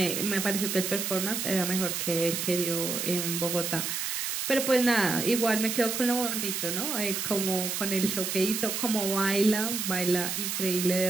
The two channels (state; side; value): noise; right; hiss, 2 dB below the sound